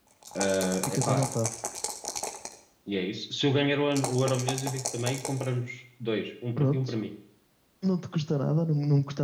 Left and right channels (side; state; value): both; identical; correlation 1.00